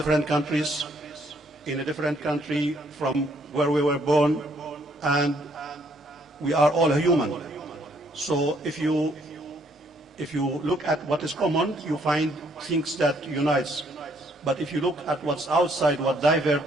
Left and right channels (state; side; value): normal; both; correlation 0.67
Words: countries, in a different country from where we were born, and we are all human. So if you look at what is common, you find things that unites. But if you look at what's outside, what divert,